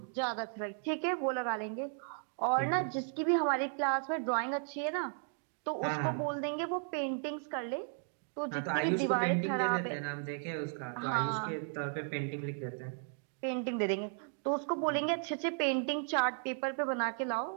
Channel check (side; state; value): left; silent; 54 dB below the other